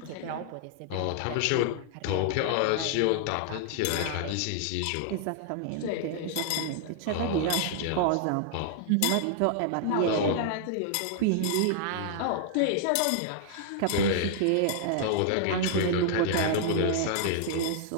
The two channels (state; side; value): different; both; correlation -0.01